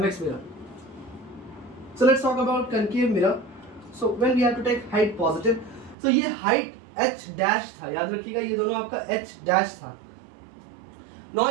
mirror. So let's talk about concave mirror. So when we have to take height positive, तो ये height h dash था, याद रखिएगा ये दोनों आपका h dash था।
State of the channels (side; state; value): left; drops out; at 6.0 s